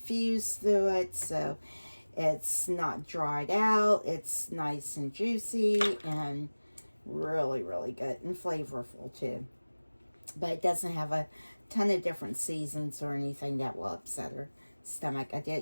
through it, so it's not dried out. It's nice and juicy and really, really good and flavorful too. But it doesn't have a ton of different seasons or anything that will upset her stomach. I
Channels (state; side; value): inverted; both; correlation -1.00